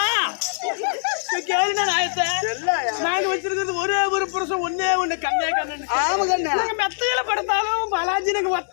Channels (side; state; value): right; silent; 64 dB below the other